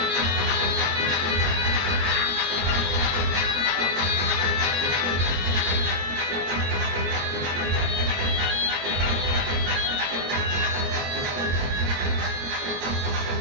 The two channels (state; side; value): late; left; 22 ms